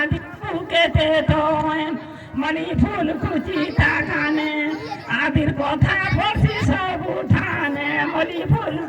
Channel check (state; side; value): identical; both; correlation 1.00